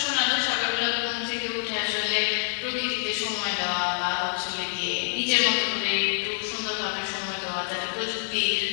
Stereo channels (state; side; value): silent; right; 57 dB below the other